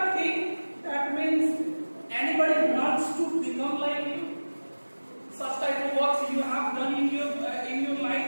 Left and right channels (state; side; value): inverted; both; correlation -1.00